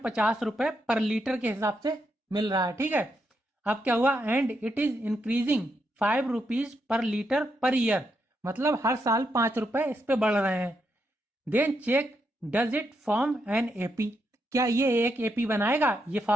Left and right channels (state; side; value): normal; both; correlation 0.81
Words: रुपए पर लीटर के हिसाब से मिल रहा है, ठीक है। अब क्या हुआ, and it is increasing 5 rupees per litre per year, मतलब हर साल 5 रुपए इस पे बढ़ रहे हैं। Then check does it form an AP, क्या ये एक एपी बनाएगा, ये